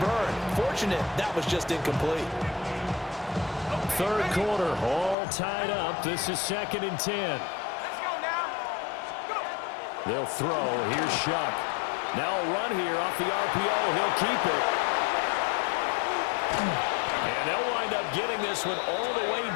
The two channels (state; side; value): drops out; right; at 5.2 s